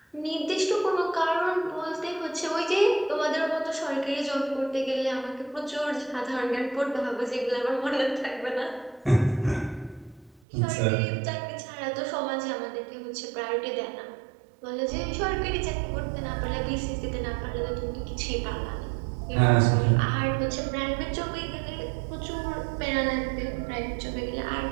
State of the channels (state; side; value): drops out; left; at 10.4 s